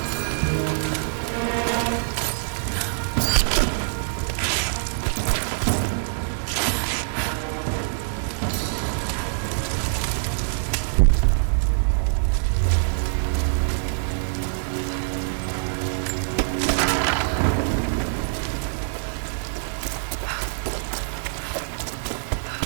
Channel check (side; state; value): left; silent; digital silence